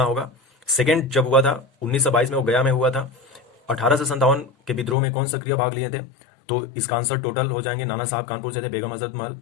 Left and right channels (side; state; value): right; drops out; at 5.0 s